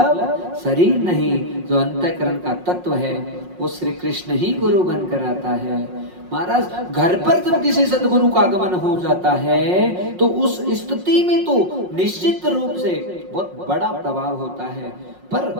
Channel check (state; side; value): late; left; 5.5 ms